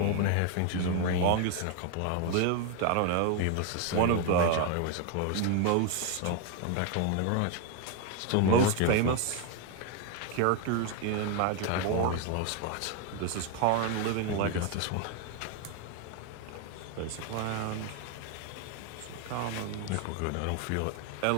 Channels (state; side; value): different; both; correlation 0.01